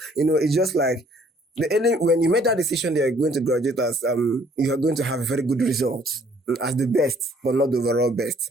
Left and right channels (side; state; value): both; normal; correlation 0.60